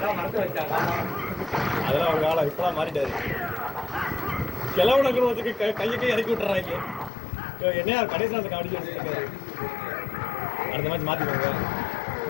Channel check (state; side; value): drops out; right; at 7.1 s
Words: அதெல்லாம் ஒரு காலம் இப்பெல்லாம் மாறிட்டாரு. கிழவன குடும்பத்துக்கு கையை இறக்கி விட்டுறாங்க. என்னையா கடைசியில் அந்த காமெடி வச்சிருக்காரு. அடுத்த மாதிரி மாத்திக்கோங்க.